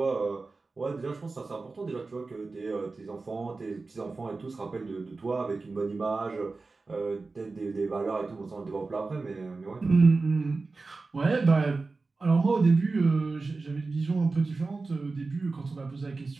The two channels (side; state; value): left; quieter; 3.8 dB